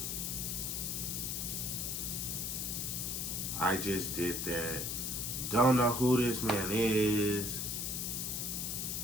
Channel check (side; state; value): left; noise; hiss, 1 dB below the sound